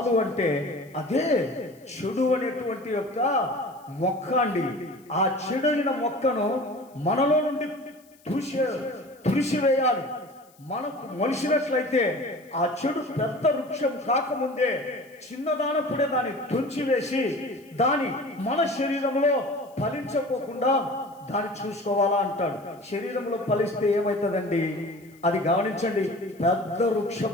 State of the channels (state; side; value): noise; left; hiss, 30 dB below the sound